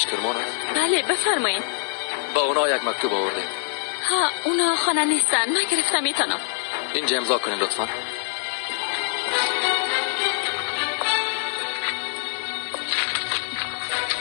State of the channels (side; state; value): right; silent; 63 dB below the other